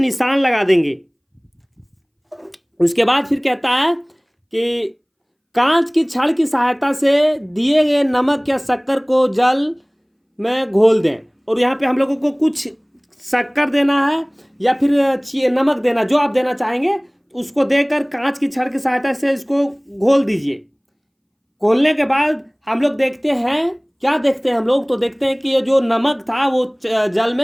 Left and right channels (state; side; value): identical; both; correlation 1.00